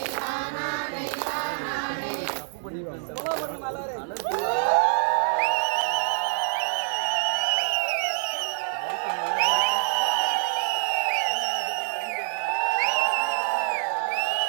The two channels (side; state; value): left; silent; digital silence